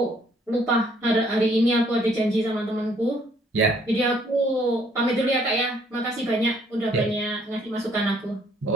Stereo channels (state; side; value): normal; both; correlation 0.64